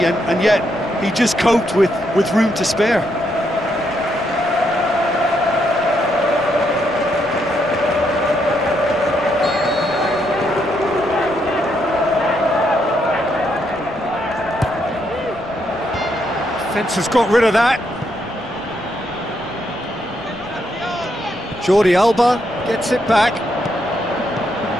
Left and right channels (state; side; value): noise; left; rumble, 23 dB below the sound